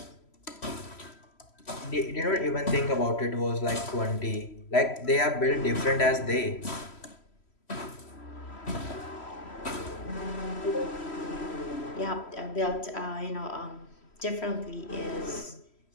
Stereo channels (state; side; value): late; right; 3.1 ms